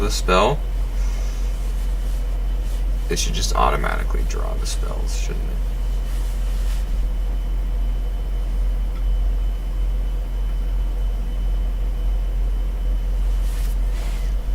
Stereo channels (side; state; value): both; identical; correlation 1.00